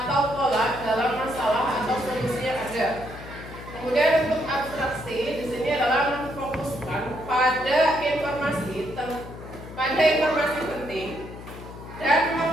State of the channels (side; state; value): left; noise; hum, 13 dB below the sound